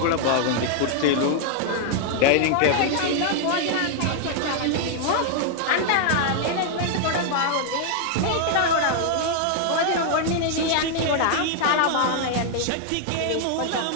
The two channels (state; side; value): different; both; correlation 0.00